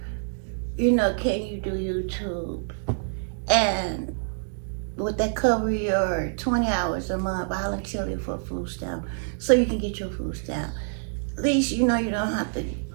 you know, can you do YouTube? And would that cover your 20 hours a month voluntarily for food stamp, so you can get your food stamp? At least, you know, you don't have to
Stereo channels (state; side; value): silent; left; digital silence